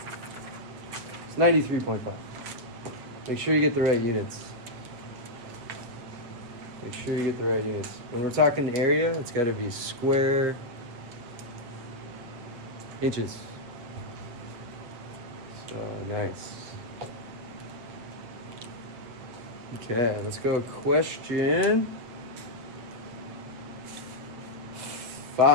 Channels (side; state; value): left; late; 8.5 ms